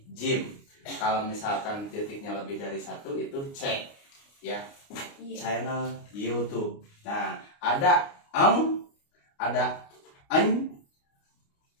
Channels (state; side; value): late; right; 29 ms